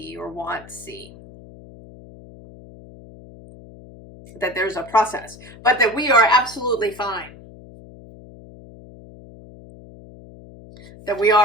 or want to see. That there's a process, but that we are absolutely fine. That we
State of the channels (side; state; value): left; noise; hum, 19 dB below the sound